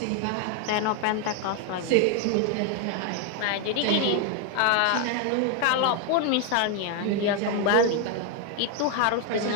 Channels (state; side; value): different; both; correlation 0.01